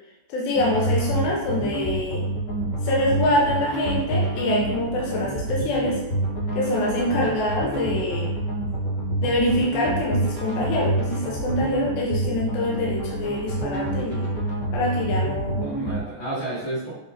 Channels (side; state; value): right; late; 14 ms